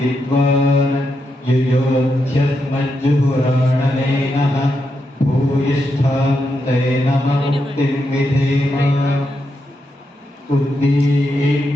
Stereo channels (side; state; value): both; normal; correlation 0.84